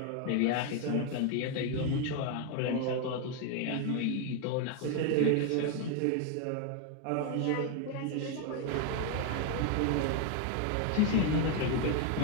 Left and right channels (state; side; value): different; both; correlation 0.01